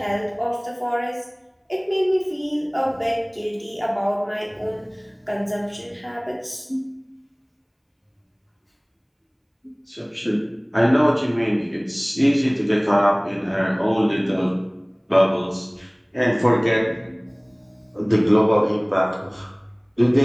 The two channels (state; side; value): identical; both; correlation 1.00